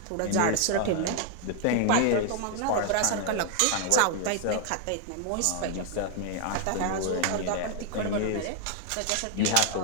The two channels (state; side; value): different; both; correlation 0.00